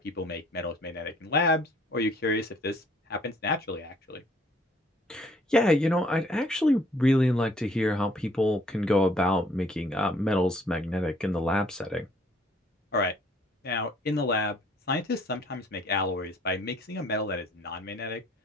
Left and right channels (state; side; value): normal; both; correlation 0.60